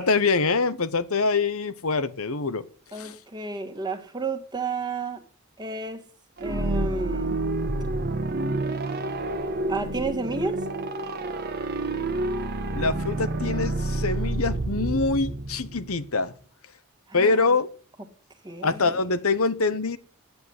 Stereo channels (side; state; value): both; normal; correlation -0.04